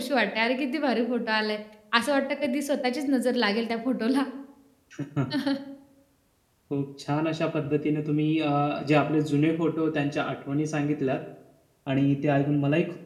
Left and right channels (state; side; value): identical; both; correlation 1.00